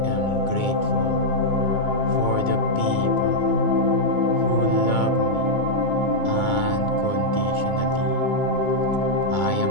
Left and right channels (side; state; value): right; late; 2.2 ms